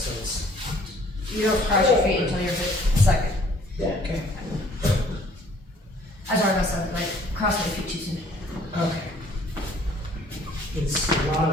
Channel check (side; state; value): both; normal; correlation 0.58